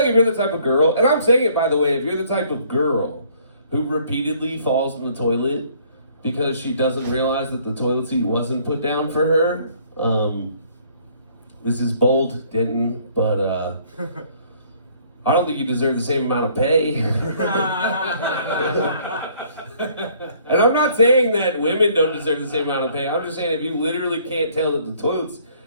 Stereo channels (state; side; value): inverted; both; correlation -0.61